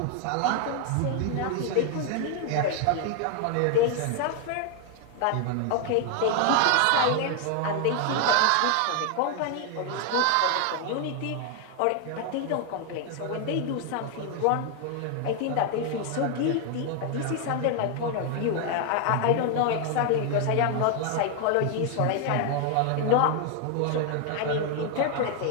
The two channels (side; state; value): both; different; correlation 0.00